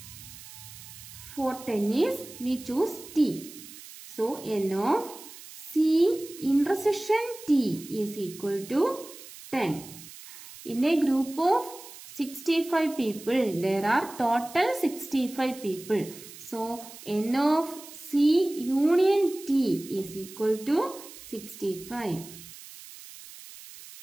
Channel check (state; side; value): noise; right; hiss, 16 dB below the sound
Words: For tennis, we choose T. So, n of C intersection T is equal to 10. In a group of 65 people, there are total 65 people. So, n of C union T is equal to 65.